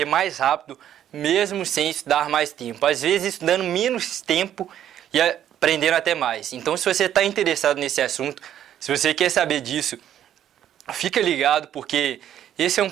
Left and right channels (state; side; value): quieter; left; 10.8 dB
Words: mais rápido, mesmo sem estudar mais tempo. Às vezes estudando menos tempo e aprendendo até mais. Então se você está interessado nesse assunto, se você quer saber disso, fica ligado porque esse é um